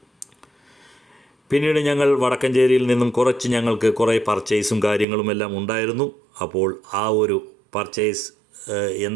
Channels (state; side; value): drops out; left; at 5.1 s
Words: പിന്നീട് ഞങ്ങൾ വടക്കഞ്ചേരിയിൽ നിന്നും ഞങ്ങൾക്ക് കുറേ പർച്ചേസും കാര്യങ്ങളും എല്ലാം ഉണ്ടായിരുന്നു. അപ്പോൾ ആ ഒരു പർച്ചേസ്